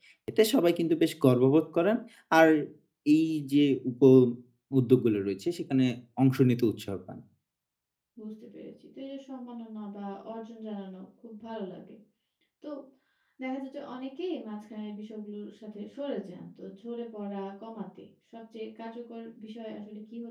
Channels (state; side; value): identical; both; correlation 1.00